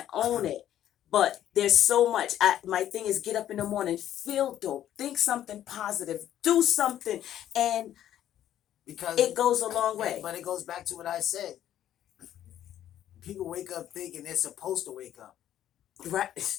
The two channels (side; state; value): right; quieter; 11.5 dB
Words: own it. But there's so much. My thing is get up in the morning, feel dope, think something positive, do something, and because it goes a long way. But it goes back to what I said. People wake up thinking they're supposed to wake up.